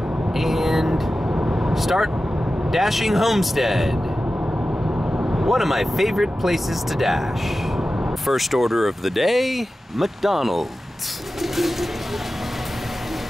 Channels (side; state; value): both; normal; correlation 0.94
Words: and start dashing Homestead. One of my favorite places to dash. First order of the day, McDonald's.